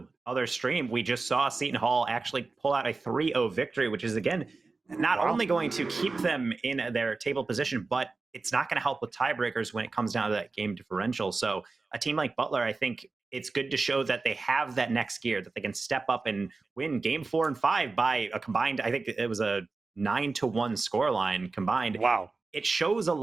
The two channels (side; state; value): left; quieter; 3.9 dB